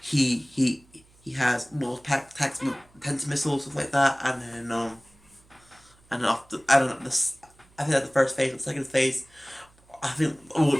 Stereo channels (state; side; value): noise; right; hum, 30 dB below the sound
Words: he has more attacks, tens missiles, stuff like that, and then after I don't know this. I think that's the first phase. The second phase, I think the